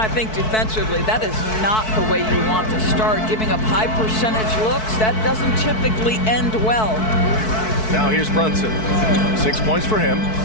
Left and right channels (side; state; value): right; late; 4.6 ms